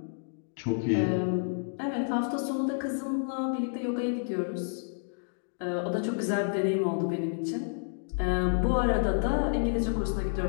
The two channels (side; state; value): right; silent; digital silence